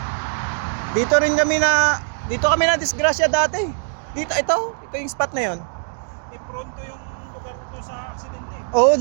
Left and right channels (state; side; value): silent; left; digital silence